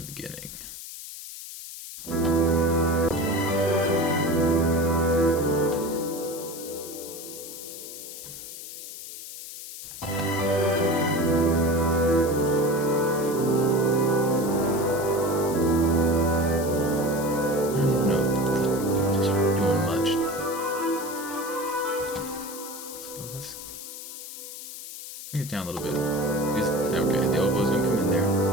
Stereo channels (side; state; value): left; noise; hiss, 11 dB below the sound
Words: beginning. it down a little bit. Okay, the oboe's gonna come in there.